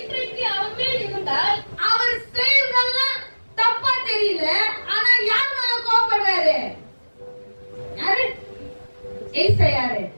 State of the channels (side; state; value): both; inverted; correlation -1.00